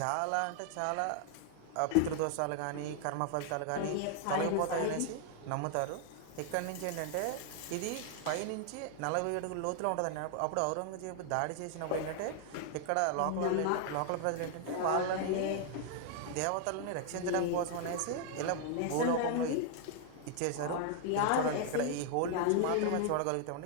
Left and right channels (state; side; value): different; both; correlation 0.00